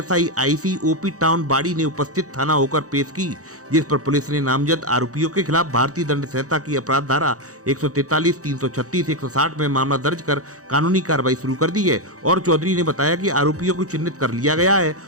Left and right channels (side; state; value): left; late; 0.66 ms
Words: IC OP town बाड़ी ने उपस्थित थाना होकर पेश की, जिस पर पुलिस ने नामजद आरोपियों के खिलाफ भारतीय दंड संहिता की अपराध धारा 143, 336, 160 में मामला दर्ज कर कानूनी कार्रवाई शुरू कर दी है। और चौधरी ने बताया कि आरोपियों को चिन्हित कर लिया गया है